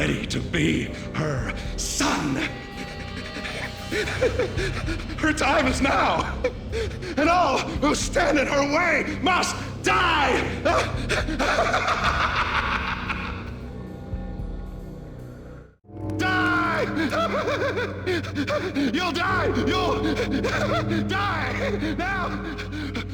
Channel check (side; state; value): both; identical; correlation 1.00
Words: to be her son. Her time is now, and all who stand in her way must die! Die! You'll die! You'll die! Now!